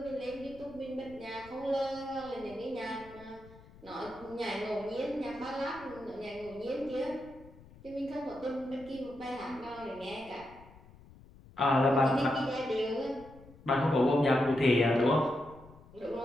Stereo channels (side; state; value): left; noise; rumble, 22 dB below the sound